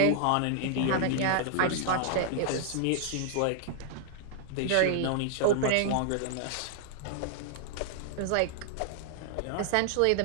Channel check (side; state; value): both; different; correlation 0.00